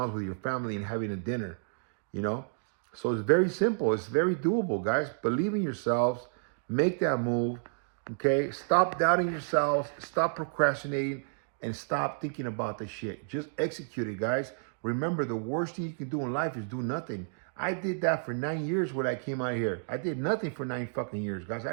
with your family and having a dinner, you know? So it's very simple. It's very doable, guys. Believe in yourselves. Make that move, okay? Stop doubting yourselves. Stop procrastinating and stop thinking about the shit. Just execute it, guys. Remember, the worst thing you can do in life is do nothing. I did that for 9 years when I came out here. I did nothing for 9 fucking years, guys. I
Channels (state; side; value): silent; left; digital silence